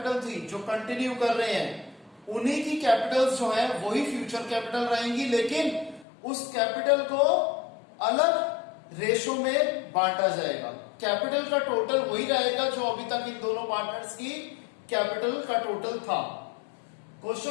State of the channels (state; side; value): drops out; right; at 6.1 s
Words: थी जो कंटिन्यू कर रहे हैं, उन्हीं की कैपिटल्स जो है वही फ्यूचर कैपिटल रहेंगी, लेकिन उस कैपिटल को अलग रेशो में बांटा जाएगा। कैपिटल का टोटल वही रहेगा जो अभी तक इन दोनों पार्टनर्स की कैपिटल का टोटल था। क्वेश्चन